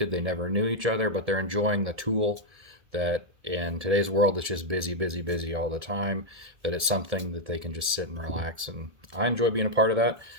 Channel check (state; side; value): late; left; 1.7 ms